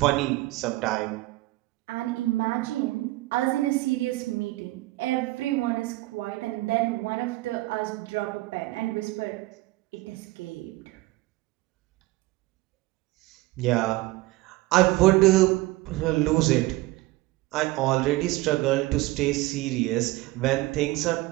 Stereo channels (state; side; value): quieter; left; 19.4 dB